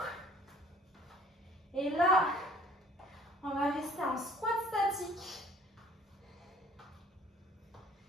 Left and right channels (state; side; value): normal; both; correlation 0.55